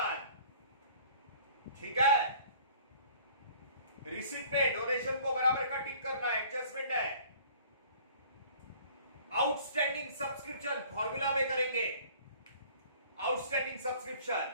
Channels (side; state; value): both; inverted; correlation -0.52